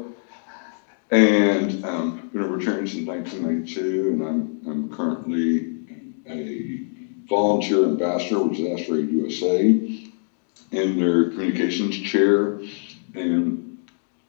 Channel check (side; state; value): right; silent; digital silence